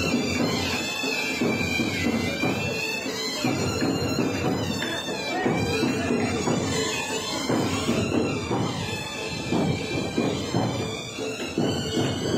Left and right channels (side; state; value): both; identical; correlation 1.00